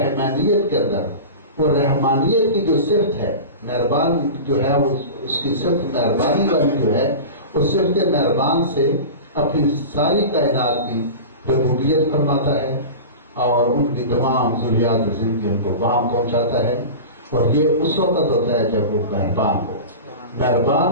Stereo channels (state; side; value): inverted; both; correlation -0.30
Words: کے اندر وہ رحمانیت کی جو صفت ہے، مہربان جو ہے، وہ اس کی صفت مہربانی والی جو ہے، اس صفت مہربان سے اپنی ساری کائنات کی ربوبیت فرماتا ہے اور ان کی تمام ضروریات زندگی ان کو وہاں پہنچاتا ہے. اور یہ اس وقت ہوتا ہے جب وہ مہربان ہو. مہربان